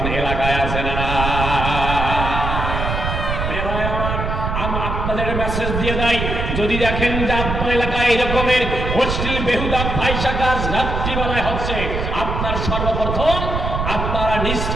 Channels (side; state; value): right; noise; rumble, 2 dB below the sound